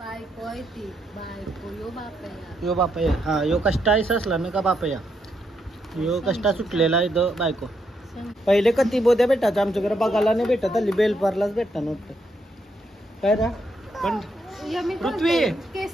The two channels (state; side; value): normal; both; correlation 0.78